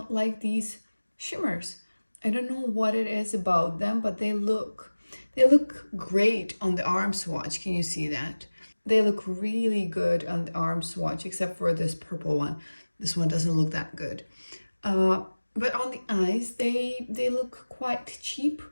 like these shimmers. I don't know what it is about them, but they look great on the arm swatch. Can you see that? They look really good on the arm swatch, except for this purple one. This one doesn't look that good. But on the eyes, they look quite cheap.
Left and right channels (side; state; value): both; inverted; correlation -1.00